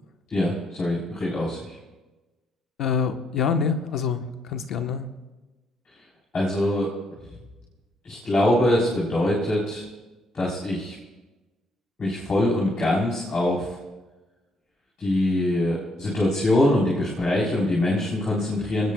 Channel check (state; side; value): normal; both; correlation 0.74